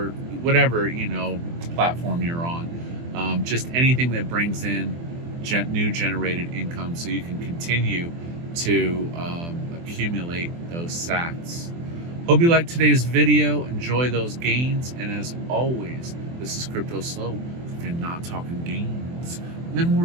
platform you're on, just anything that brings in new generated income, so you can continue to accumulate those sats. Hope you liked today's video. Enjoy those gains, and as always, this is Cryptoslo. If you're not talking gains, then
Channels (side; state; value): left; late; 24 ms